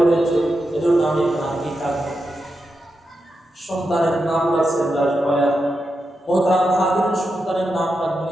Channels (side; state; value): both; normal; correlation 0.87